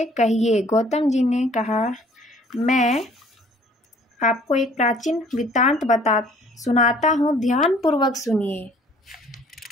कहिए। गौतम जी ने कहा, मैं आपको एक प्राचीन वृत्तांत सुनाता हूँ, ध्यान पूर्वक सुनिए।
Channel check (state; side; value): normal; both; correlation 0.56